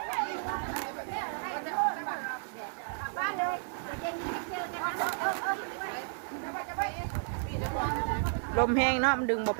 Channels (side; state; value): left; silent; digital silence